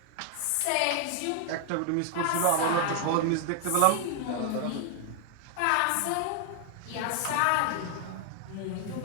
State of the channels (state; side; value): different; both; correlation 0.00